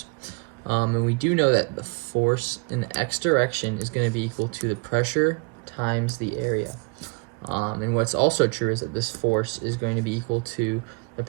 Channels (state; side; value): quieter; left; 32.3 dB